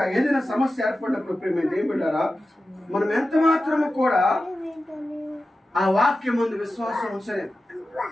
ఏదైనా సమస్య ఏర్పడినప్పుడు ప్రేమ దేవుడారా మనం ఎంత మాత్రము కూడా ఆ వాక్యం ముందు విశ్వాసం ఉంచలేదు.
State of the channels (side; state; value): both; normal; correlation 0.93